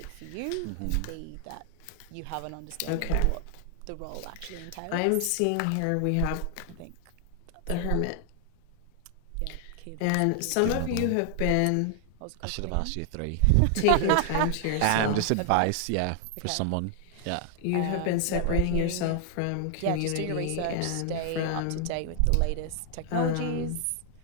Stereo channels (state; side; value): different; both; correlation 0.00